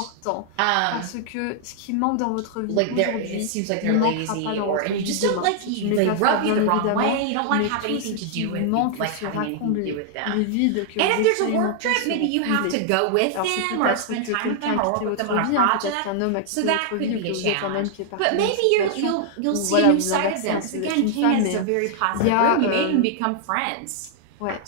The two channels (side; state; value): both; different; correlation -0.01